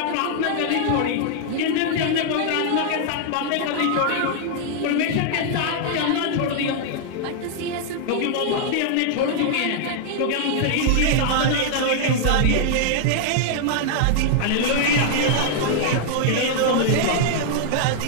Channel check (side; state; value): both; different; correlation 0.00